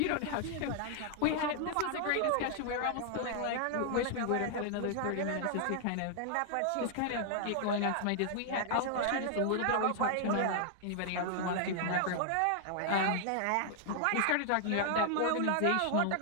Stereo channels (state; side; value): different; both; correlation 0.00